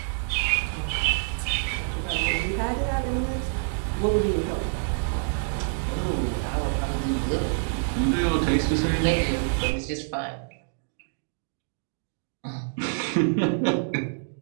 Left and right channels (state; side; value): silent; left; digital silence